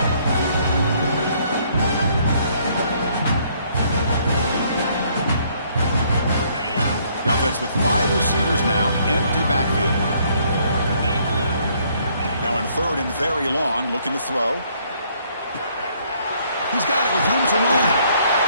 The offense with 5 receivers now. Empty backfield. Now in 3rd and very long, looking to throw. He's got it with room to run.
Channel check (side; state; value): both; inverted; correlation -0.66